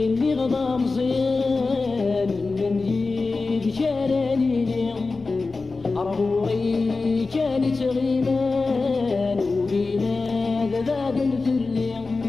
اللي غضا مزيان الندي كانني لي أرغوري كانت غيمان وقينا ذاذا في الليل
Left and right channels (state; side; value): quieter; right; 3.9 dB